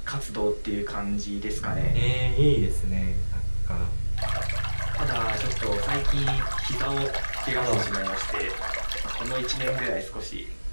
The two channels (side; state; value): both; inverted; correlation -1.00